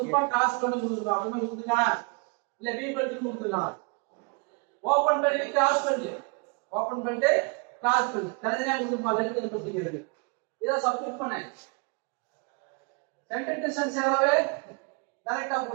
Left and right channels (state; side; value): quieter; left; 31.4 dB